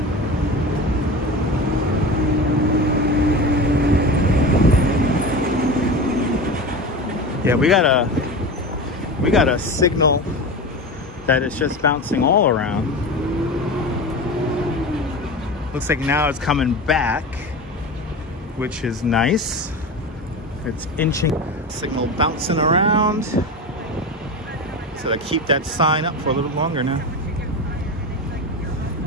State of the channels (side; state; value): both; normal; correlation 0.27